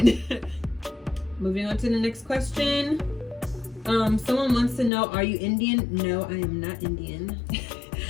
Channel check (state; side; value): drops out; right; at 4.9 s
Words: Moving on to the next question. Someone wants to know, are you Indian? No, I am not Indian.